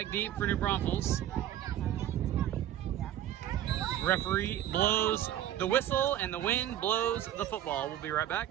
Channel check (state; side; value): quieter; left; 11.8 dB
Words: deep for New Braunfels. Referee blows the whistle and the wind blows the football. We'll be right